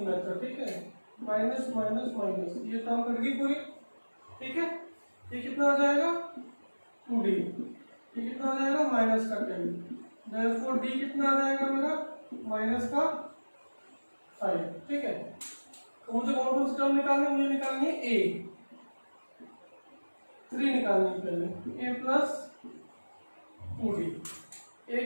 मेथड। ठीक है, माइनस माइनस माइनस, ये टर्म कट गई पूरी। ठीक है, ये कितना आ जाएगा? 2d। ये कितना आ जाएगा? माइनस का 10। देयरफॉर d कितना आ जाएगा मेरा? माइनस का 5। ठीक है, तो मुझे कौन सी टर्म निकालनी है? मुझे निकालनी है a। 3 निकालनी है पहले, a प्लस 2d। a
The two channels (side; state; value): both; inverted; correlation -1.00